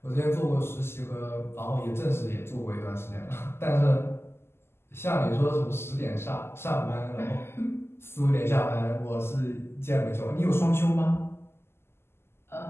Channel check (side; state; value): right; late; 0.12 ms